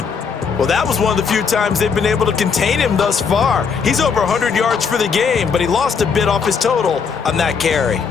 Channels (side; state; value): right; quieter; 5.9 dB